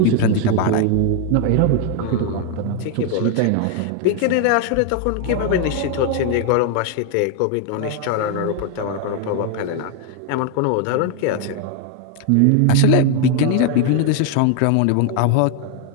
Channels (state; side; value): different; both; correlation 0.00